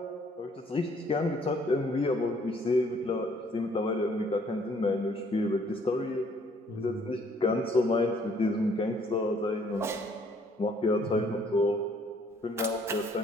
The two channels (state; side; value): normal; both; correlation 0.63